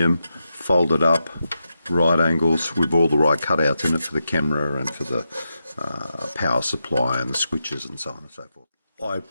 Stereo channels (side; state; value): both; inverted; correlation -0.87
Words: folded up, right angles with all the right cutouts in it for the camera and for the power supply and the switches and so on and so forth. I